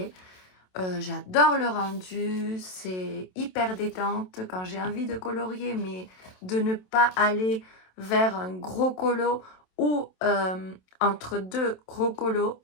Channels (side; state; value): right; late; 27 ms